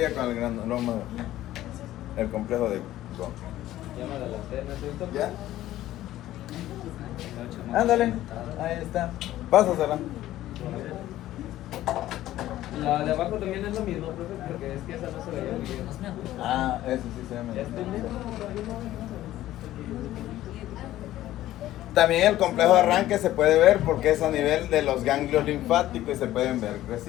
con el granuloma, el complejo de Ghon. Ya me adelanté, ¿no es cierto? ¿Ya? Ándale, ahí está. Pásasela. La de abajo también es lo mismo, profe, porque es que esa no se veía muy bien. Ah, eso sí se ve. ¿Ya estoy bien? También el complejo de arranque se puede ver porque es a nivel de los ganglios linfáticos y se pueden ver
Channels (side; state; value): right; quieter; 14.3 dB